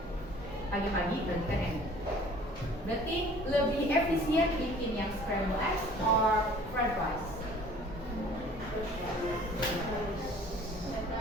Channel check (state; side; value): normal; both; correlation 0.51